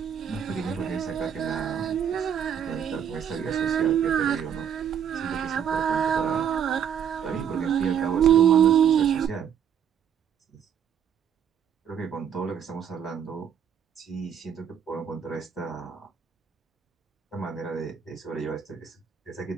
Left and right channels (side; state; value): left; quieter; 8.4 dB